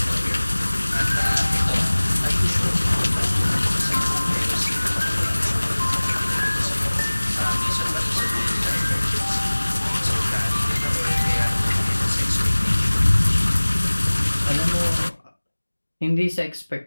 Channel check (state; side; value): inverted; both; correlation -1.00